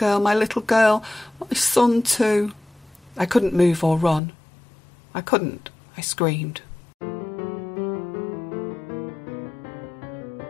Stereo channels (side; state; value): right; drops out; at 4.2 s